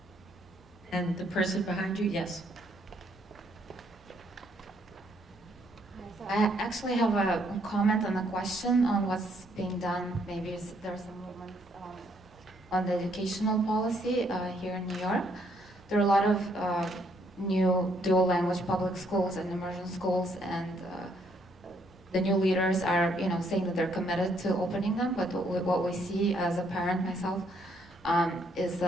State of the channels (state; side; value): normal; both; correlation 0.70